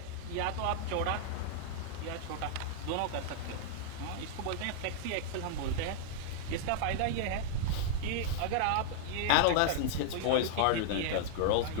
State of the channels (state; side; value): different; both; correlation -0.01